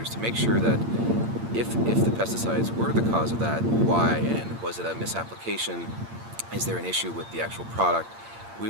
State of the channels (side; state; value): left; late; 8.7 ms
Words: to make sure that if the pesticides were the cause of that, why, and was it a misapplication? Is there an issue with the actual product? We